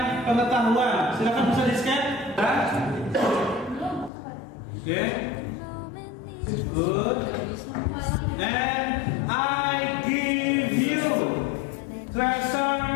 pengetahuan. Silakan bisa di-scan. Oke. Good. And I give you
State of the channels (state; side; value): drops out; right; at 4.1 s